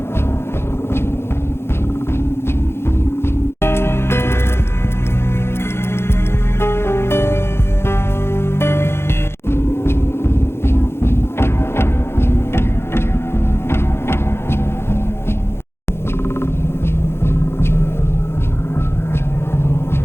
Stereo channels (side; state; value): right; late; 0.12 ms